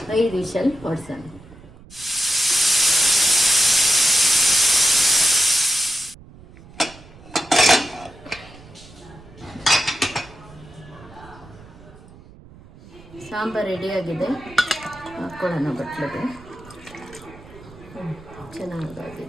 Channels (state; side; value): noise; right; rumble, 21 dB below the sound